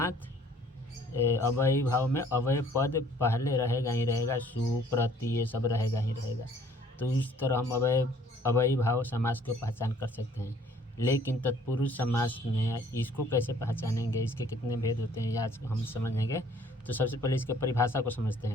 अव्ययी भाव में अव्यय पद पहले रहेगा ही रहेगा, सु प्रति ये सब रहेगा ही रहेगा। तो इस तरह हम अव्ययी भाव समास को पहचान कर सकते हैं। लेकिन तत्पुरुष समास में इसको कैसे पहचानेंगे, इसके कितने भेद होते हैं, आज हम समझेंगे। तो सबसे पहले इसके परिभाषा को समझते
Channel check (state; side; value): normal; both; correlation 0.57